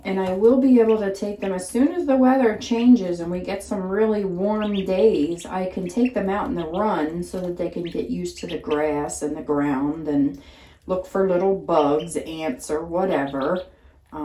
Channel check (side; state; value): both; identical; correlation 1.00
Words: I will be able to take them as soon as the weather changes and we get some really warm days. I can take them out in the run so that they can get used to the grass and the ground and look for little bugs, ants, or whatever.